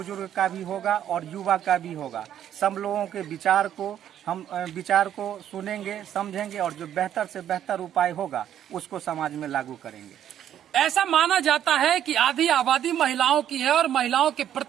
का भी होगा और युवा का भी होगा। सब लोगों के विचार को सुनेंगे, समझेंगे और जो बेहतर से बेहतर उपाय होगा उसको समाज में लागू करेंगे। ऐसा माना जाता है कि आधी आबादी महिलाओं की है और महिलाओं के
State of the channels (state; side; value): quieter; left; 10.5 dB